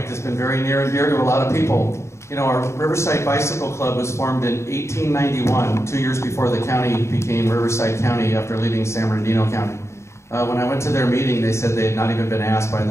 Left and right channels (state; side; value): late; right; 0.13 ms